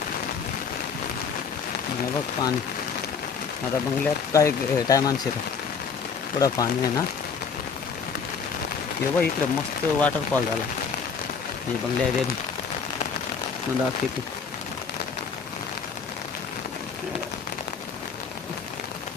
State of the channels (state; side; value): quieter; right; 5.9 dB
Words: बघ पाणी आता बंगल्यात काय टायमान शिरत थोडं पाणी आहे ना. हे बघ इकडं मस्त वॉटरफॉल झाला. हे बंगल्या रे दाखवते.